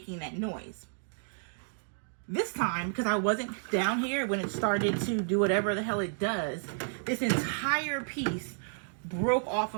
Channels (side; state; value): left; silent; digital silence